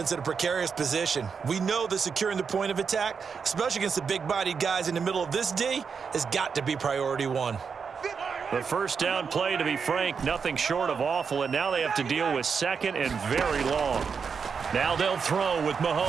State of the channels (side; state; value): left; quieter; 6.0 dB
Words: in a precarious position. We know that securing the point of attack, especially against the big-bodied guys in the middle of this D, has got to be priority 1. The 1st down play, to be frank, nothing short of awful, and now they have to deal with 2nd and very long. Now they'll throw with